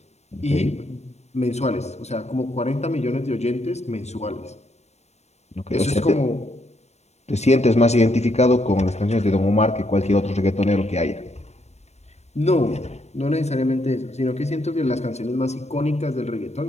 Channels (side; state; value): right; late; 0.32 ms